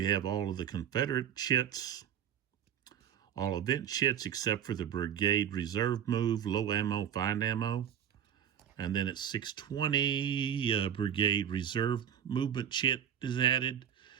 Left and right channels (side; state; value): left; quieter; 9.4 dB